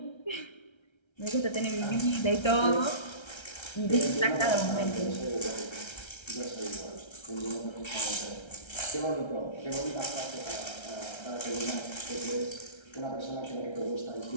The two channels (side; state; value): right; late; 1.3 ms